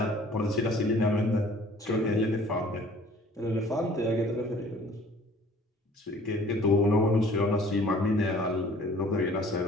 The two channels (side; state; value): both; normal; correlation 0.53